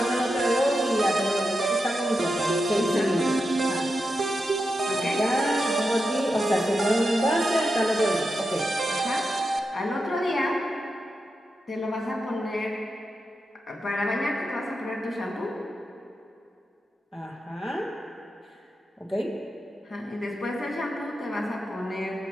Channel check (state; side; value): normal; both; correlation 0.88